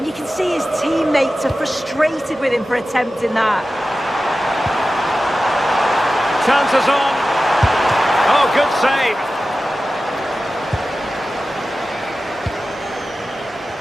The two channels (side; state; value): both; normal; correlation 0.94